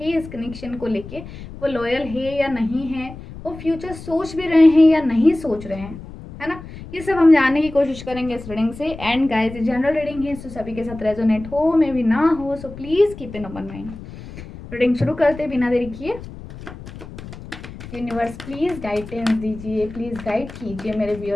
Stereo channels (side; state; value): left; noise; rumble, 14 dB below the sound